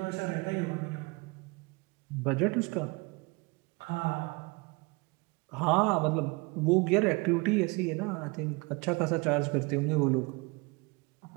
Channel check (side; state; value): left; quieter; 27.2 dB